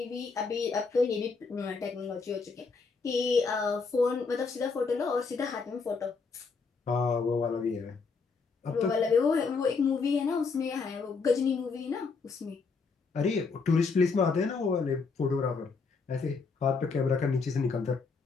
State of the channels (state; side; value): quieter; right; 4.7 dB